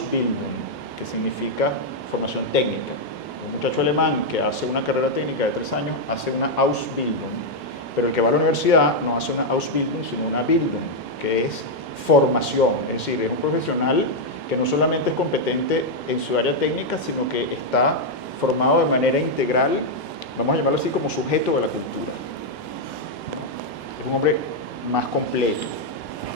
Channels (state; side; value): normal; both; correlation -0.01